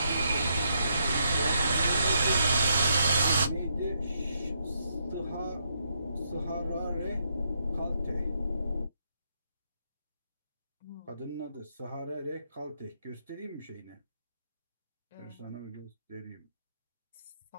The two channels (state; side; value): inverted; both; correlation -0.77